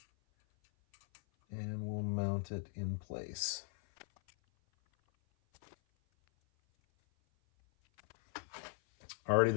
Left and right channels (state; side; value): silent; right; 52 dB below the other